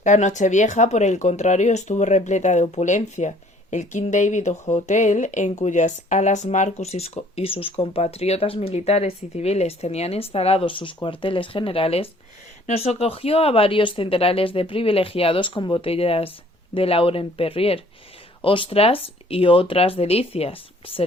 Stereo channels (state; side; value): normal; both; correlation 0.57